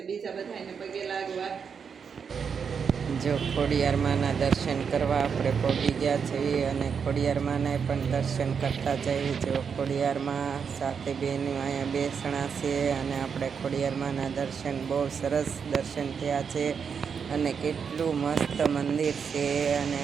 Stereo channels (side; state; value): left; quieter; 6.5 dB